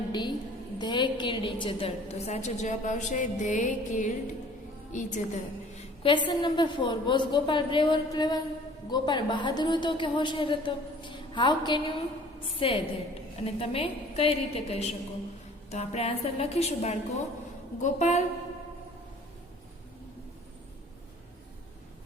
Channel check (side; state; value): both; normal; correlation 0.51